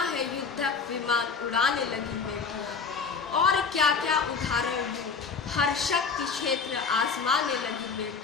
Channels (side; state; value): right; quieter; 5.4 dB